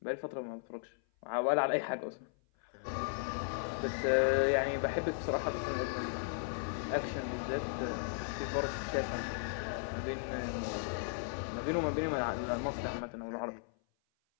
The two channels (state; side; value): silent; right; 54 dB below the other